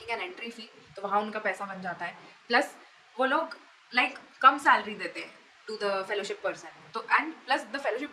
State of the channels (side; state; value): both; identical; correlation 1.00